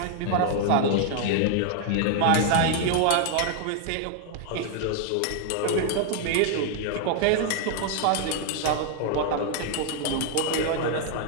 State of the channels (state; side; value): different; both; correlation 0.00